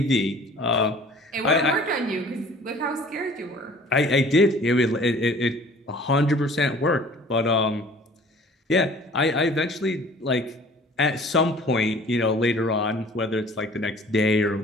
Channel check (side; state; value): both; normal; correlation 0.50